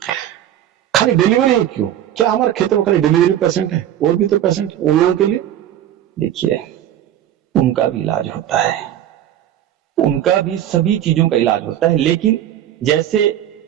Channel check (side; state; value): left; quieter; 11.5 dB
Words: खाली डिलीवरी ही क्यों? क्या हमारे क्षेत्र में खाली डिलीवरी पेशेंट है? और भी तो पेशेंट है उन लोगों के लिए। देखिए, उनका भी इलाज होता है, उनका भी सभी चीजों का इलाज होता है, लेकिन जैसे